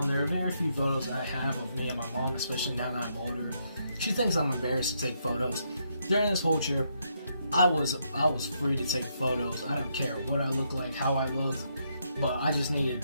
There are very few photos I have of me and my mom, especially now that I'm older. She thinks I'm embarrassed to take photos. During this whole trip, I was free to take photos. I don't care what I look like, how I look, but I just needed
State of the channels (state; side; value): inverted; both; correlation -0.77